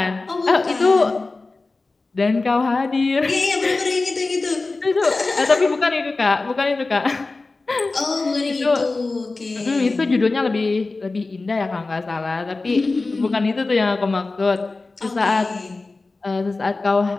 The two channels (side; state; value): right; quieter; 3.5 dB